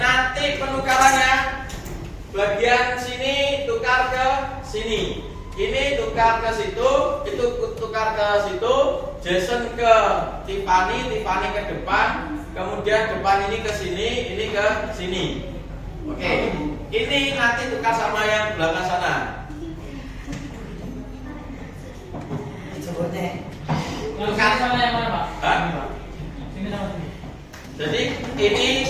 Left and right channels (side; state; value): both; identical; correlation 1.00